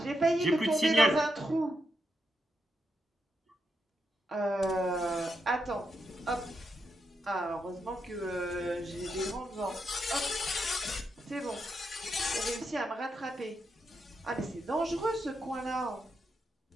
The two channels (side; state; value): both; normal; correlation 0.82